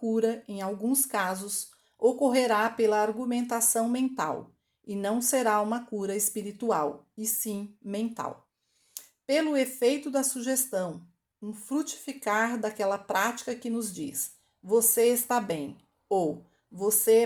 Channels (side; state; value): both; identical; correlation 1.00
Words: em alguns casos, ocorrerá pela argumentação mental, e não será uma cura espiritual, e sim mental. Pelo efeito da sugestão, um frutificar daquela prática que nos diz: você está bem, ou você